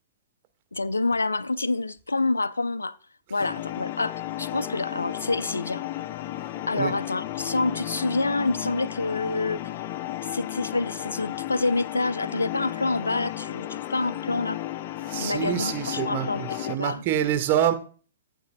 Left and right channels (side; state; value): both; inverted; correlation -0.66